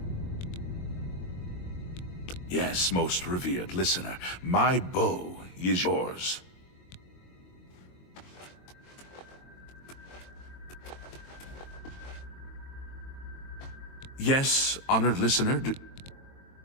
Yes, most revered listener, my bow is yours. Yes, honored listener.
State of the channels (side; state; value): right; late; 22 ms